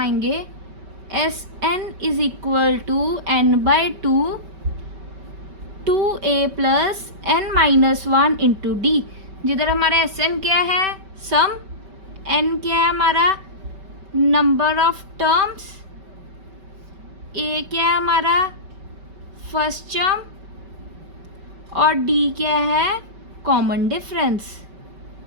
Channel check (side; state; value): left; late; 5.2 ms